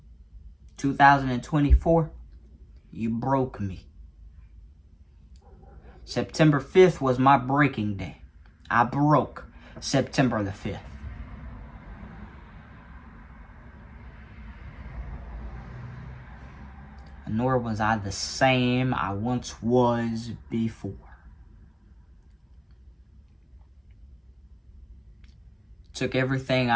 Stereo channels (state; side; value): identical; both; correlation 1.00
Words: 2024, you broke me. September 5th was my breaking day. I broke September the 5th. Nor was I the same I once was before. Took everything